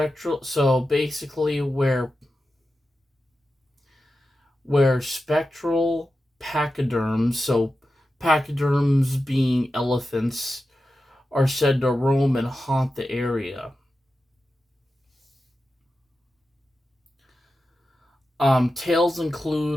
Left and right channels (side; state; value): both; normal; correlation 0.92